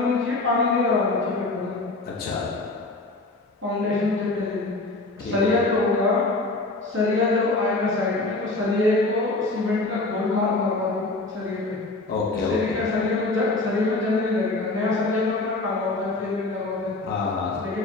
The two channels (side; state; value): right; quieter; 3.1 dB